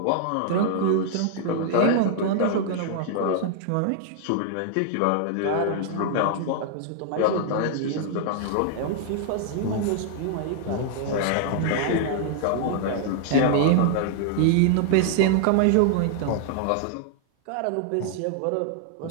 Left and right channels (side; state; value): both; different; correlation -0.01